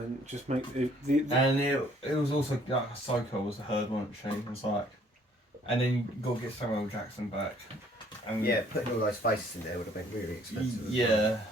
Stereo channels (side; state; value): both; normal; correlation 0.61